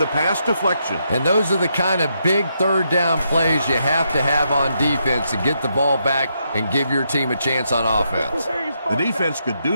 pass deflection. And those are the kind of big 3rd down plays you have to have on defense to get the ball back and give your team a chance on offense. The defense could do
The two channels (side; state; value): both; inverted; correlation -0.80